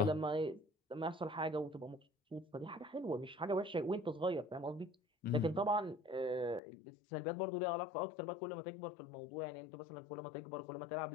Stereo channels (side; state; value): right; drops out; at 6.6 s